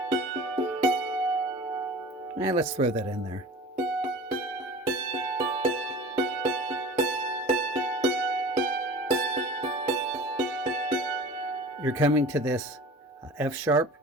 And let's throw that in there. You're coming to this F sharp,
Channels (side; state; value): both; normal; correlation 0.40